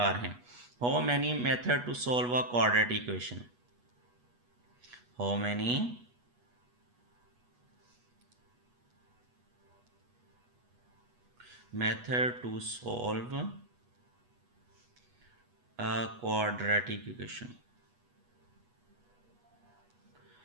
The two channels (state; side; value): late; left; 8.2 ms